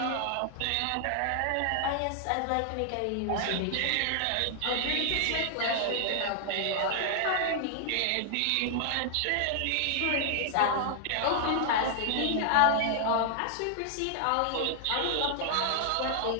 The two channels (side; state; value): both; different; correlation 0.00